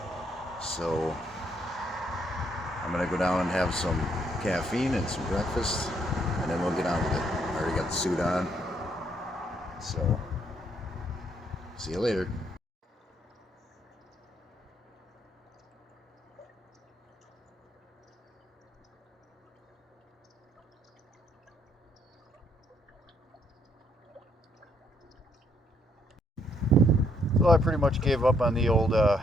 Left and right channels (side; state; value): both; normal; correlation 0.71